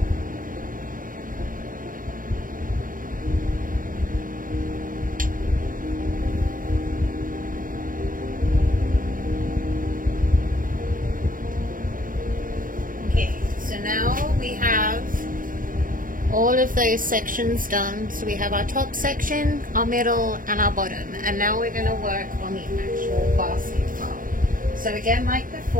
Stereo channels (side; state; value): left; late; 0.40 ms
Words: Now we have all of those sections done. So we have our top section, our middle, and our bottom. And now we're going to work on the actual basket part. So again, like